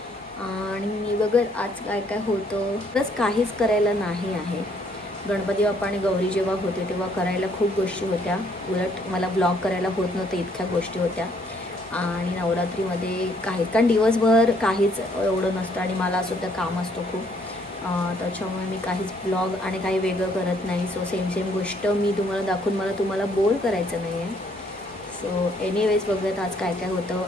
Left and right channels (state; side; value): normal; both; correlation 0.66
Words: आणि बघा आज काय काय होतं. बस काहीच करायला नाही आहे. गणपती बाप्पा आणि गौरी जेव्हा होते तेव्हा करायला खूप गोष्टी होत्या. उलट मला ब्लॉग करायला होत नव्हतं, इतक्या गोष्टी होत्या. आणि नवरात्रीमध्ये काही कारण दिवसभर काहीच एवढं नसतं आणि मला सुद्धा काम असतं खूप. त्याच्यामुळे मी काहीच ब्लॉग आणि काही वेगळं करत नाही. सो सेम गोष्ट मी तुम्हाला दाखवून मला तुम्हाला बोर करायचं नाही आहे. सो एनिवेज बघूयात आज काय काय होतं.